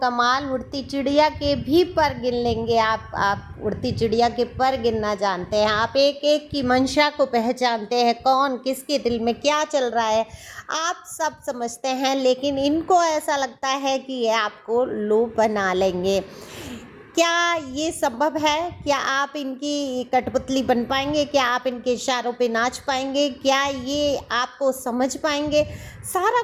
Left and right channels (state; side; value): identical; both; correlation 1.00